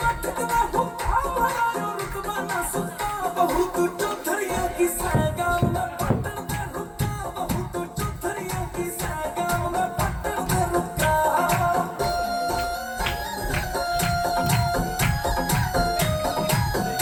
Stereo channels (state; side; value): identical; both; correlation 1.00